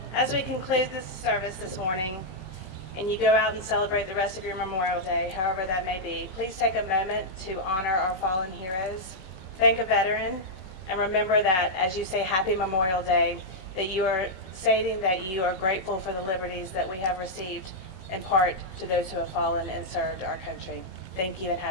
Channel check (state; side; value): late; right; 16 ms